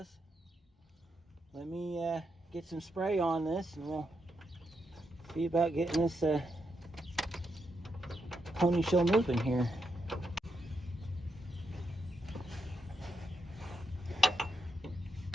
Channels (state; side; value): normal; both; correlation 0.82